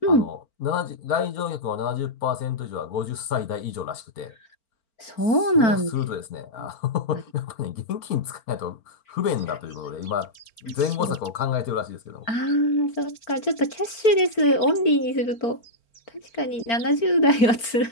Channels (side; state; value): right; late; 4.4 ms